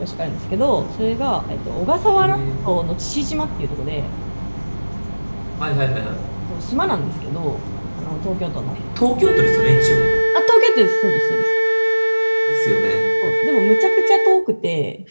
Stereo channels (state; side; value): inverted; both; correlation -1.00